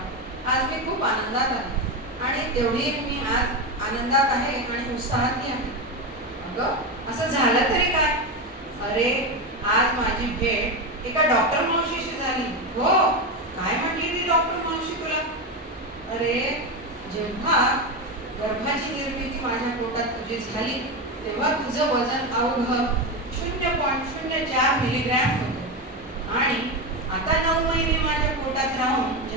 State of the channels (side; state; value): both; normal; correlation 0.15